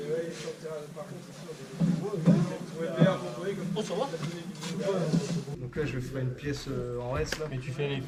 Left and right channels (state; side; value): identical; both; correlation 1.00